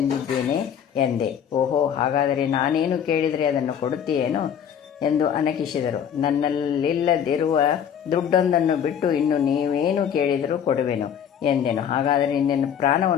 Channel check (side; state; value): right; quieter; 8.5 dB